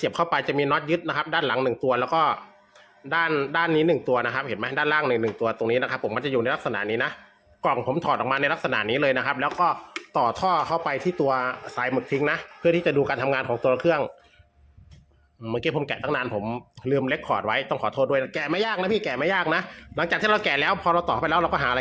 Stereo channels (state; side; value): identical; both; correlation 1.00